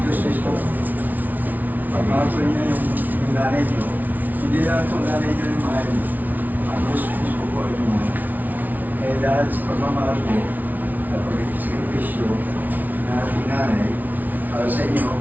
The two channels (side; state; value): left; late; 0.080 ms